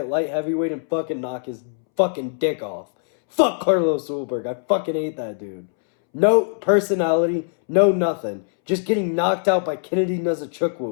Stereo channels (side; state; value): right; silent; 64 dB below the other